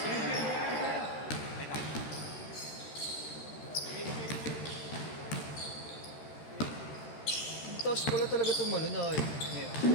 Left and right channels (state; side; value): late; right; 13 ms